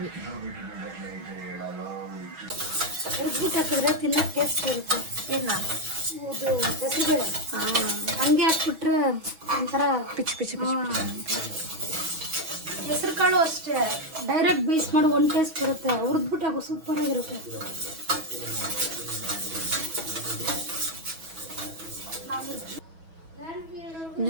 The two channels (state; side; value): late; left; 6.2 ms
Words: ಉರ್ಬಿಟ್ಟು ಹಾಕಿದ್ರೆ ತಿನ್ನಕ್ಕೆ ಟೇಸ್ಟ್ ಬರುತ್ತೆ. ಏನು ಇದು ಗಸಿಬೇಳೆ ಹಂಗೆ ಹಾಕ್ಬಿಟ್ರೆ ಒಂಥರ ಪಿಚ್. ಹೆಸರು ಕಾಳು ಅಷ್ಟೇ, ಡೈರೆಕ್ಟ್ ಬೇಯಿಸ್ ಮಾಡಿ ಒಂದು ಟೇಸ್ಟ್ ಬರುತ್ತೆ. ಹುರಿದ್ಬಿಟ್ಟು ಹಾಕೋ ಸೂಪರ್ ಆಗಿರುತ್ತೆ.